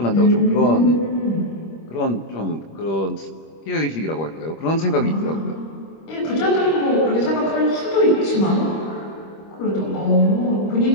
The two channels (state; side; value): late; right; 25 ms